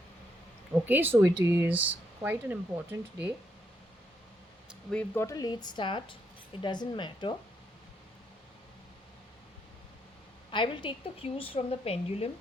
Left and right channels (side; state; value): both; normal; correlation 0.77